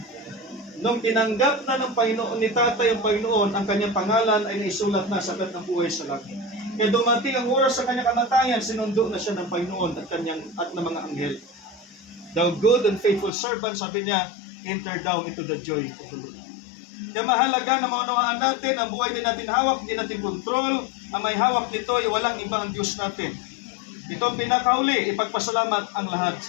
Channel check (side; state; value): right; drops out; at 13.3 s